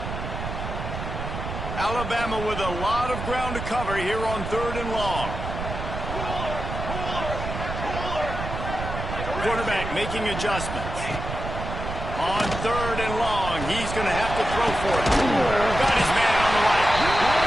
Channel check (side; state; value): right; noise; rumble, 6 dB below the sound